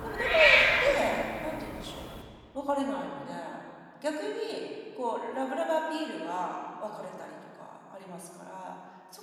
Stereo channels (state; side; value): identical; both; correlation 1.00